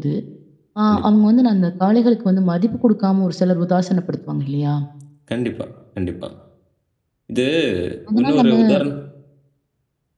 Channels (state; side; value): identical; both; correlation 1.00